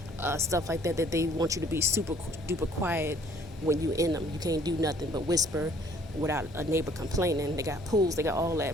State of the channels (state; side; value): normal; both; correlation 0.59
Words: stuff like that they want you to be super duper quiet when you in them. You can't do nothing but whisper without a neighbor complaining. They got pools, they got all